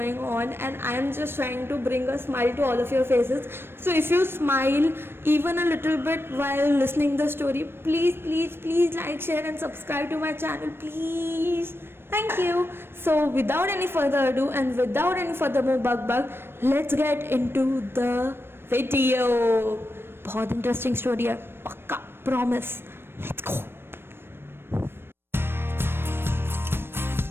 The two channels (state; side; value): late; left; 0.11 ms